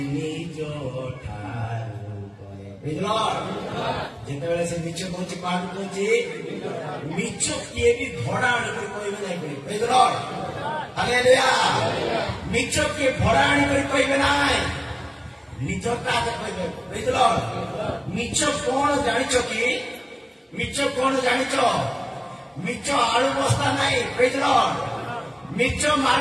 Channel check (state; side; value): identical; both; correlation 1.00